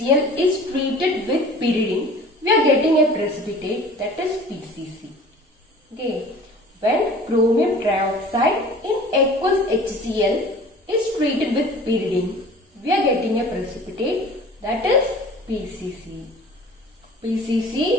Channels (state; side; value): normal; both; correlation 0.44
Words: is treated with pyridine, we are getting a precipitate, that is PCC. Okay. When chromium trioxide in aqueous HCl is treated with pyridine, we are getting a precipitate, that is PCC.